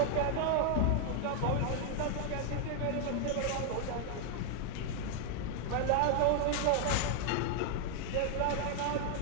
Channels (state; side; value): different; both; correlation 0.00